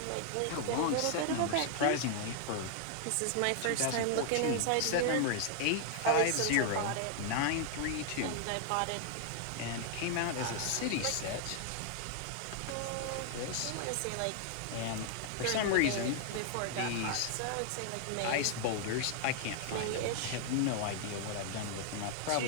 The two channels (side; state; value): both; different; correlation 0.00